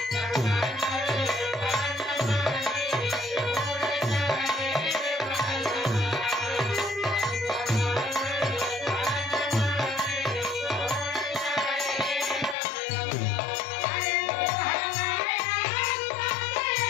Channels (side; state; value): right; drops out; at 12.6 s